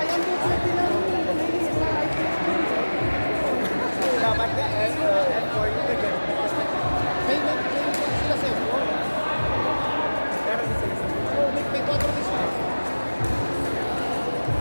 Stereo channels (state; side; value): inverted; both; correlation -1.00